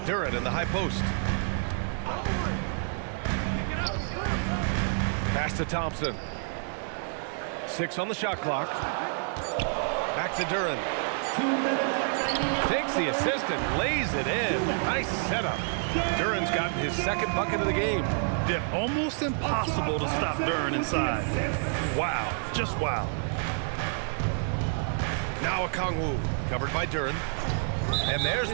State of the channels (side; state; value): left; silent; 57 dB below the other